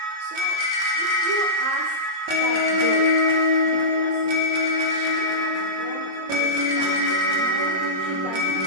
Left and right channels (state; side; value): late; left; 26 ms